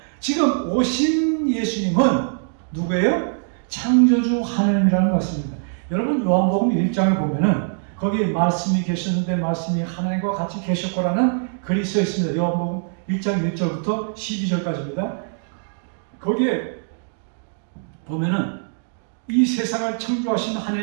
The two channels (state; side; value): silent; left; digital silence